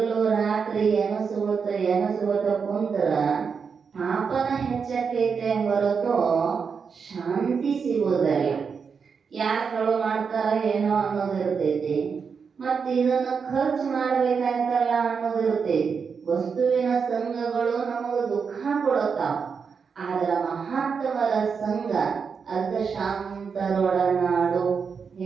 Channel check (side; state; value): left; quieter; 5.9 dB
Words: ರಾತ್ರಿ ಎನಸುವತ ಕುಂತ್ರ ಪಾಪನ ಹೆಚ್ಚಕೈತೆ ಹೊರತು ಶಾಂತಿ ಸಿಗೋದಲ್ಲ. ಯಾರು ಕಳು ಮಾಡ್ತಾರ ಏನೋ ಅನ್ನೋದಿರ್ತೈತಿ, ಮತ್ತು ಇದನ್ನು ಖರ್ಚು ಮಾಡ್ಬೇಕಾಯ್ತಲ್ಲ ಅನ್ನೋದಿರ್ತೈತಿ. ವಸ್ತುವಿನ ಸಂಘಗಳು ನಮಗೆ ದುಃಖ ಕೊಡುತ್ತಾವ, ಆದ್ರ ಮಹಾತ್ಮರ ಸಂಘ ಅರ್ಧ ಶಾಂತರೊಡನಾಡು